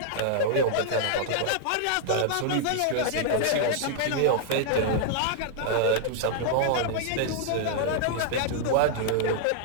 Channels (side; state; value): both; different; correlation 0.00